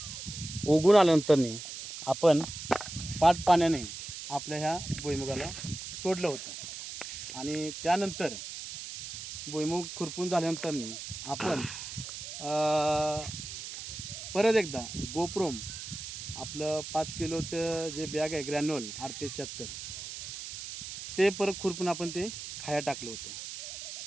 उगून आल्यानंतर आपण पाट पाण्याने आपल्या ह्या भुईमुगाला सोडलं होतं. आणि त्यानंतर भुईमुग खुरपून झाल्यानंतर आपण परत एकदा गोप्रोम आपलं 5 किलोचं जे बॅग आहे ग्रॅन्युअल RPS 76 ते परत खुरपून आपण ते खाया टाकलं होतं.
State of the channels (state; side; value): noise; right; hiss, 9 dB below the sound